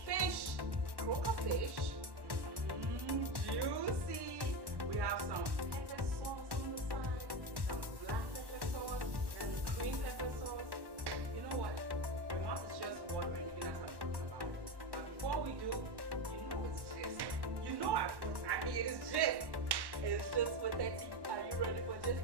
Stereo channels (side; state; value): left; late; 1.1 ms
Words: fish, croaker fish, juicy. We have some pepper sauce on the side, some black pepper sauce, and green pepper sauce. You know what? My mouth is just watering even as I'm talking about it. But before we do, you know it's gist. You know I mean it is gist. It's Gist With Hetty. Are you ready for gist?